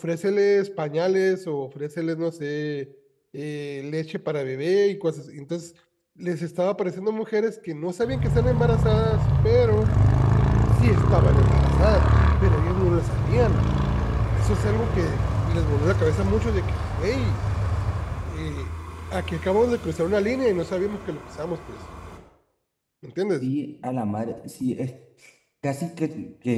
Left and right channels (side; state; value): both; identical; correlation 1.00